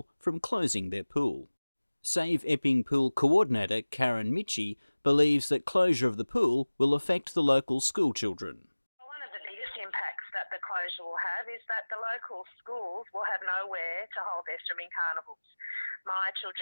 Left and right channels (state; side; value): inverted; both; correlation -1.00